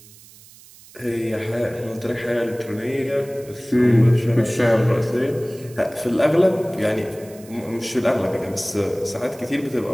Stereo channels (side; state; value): right; noise; hiss, 22 dB below the sound